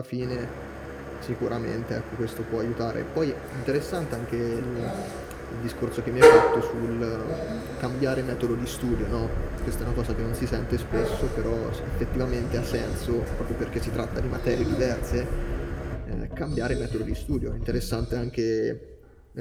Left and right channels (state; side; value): identical; both; correlation 1.00